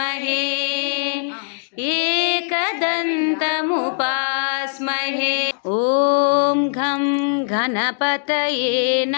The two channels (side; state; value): right; silent; digital silence